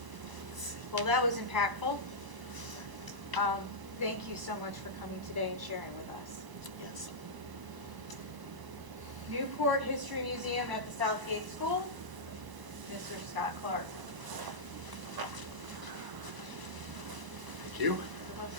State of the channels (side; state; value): left; late; 1.0 ms